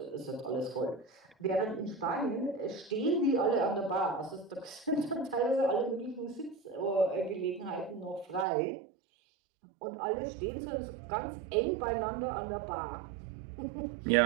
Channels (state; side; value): drops out; left; at 8.5 s